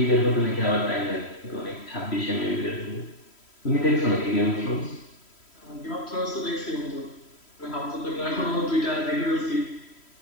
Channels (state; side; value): late; right; 3.1 ms